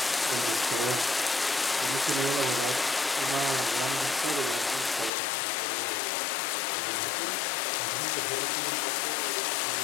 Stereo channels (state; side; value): drops out; right; at 5.1 s